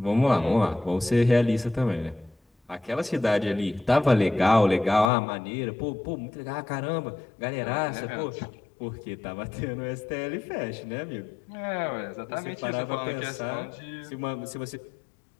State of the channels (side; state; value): right; drops out; at 5.1 s